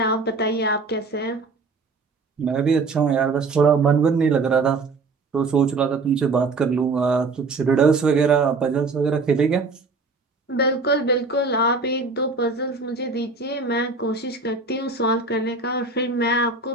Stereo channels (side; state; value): left; quieter; 3.9 dB